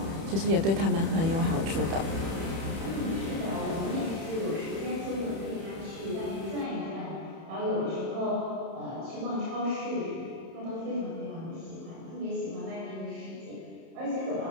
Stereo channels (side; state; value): left; late; 31 ms